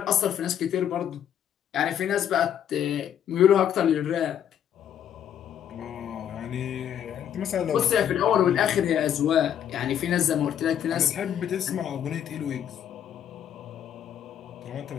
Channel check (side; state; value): right; quieter; 9.7 dB